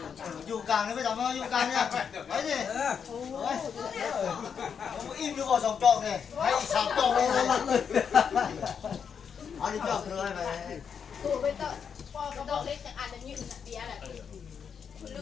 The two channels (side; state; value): right; quieter; 7.0 dB